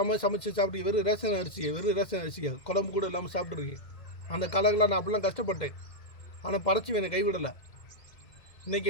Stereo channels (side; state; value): right; late; 2.1 ms